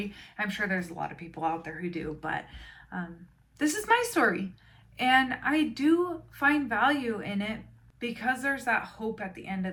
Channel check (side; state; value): both; identical; correlation 1.00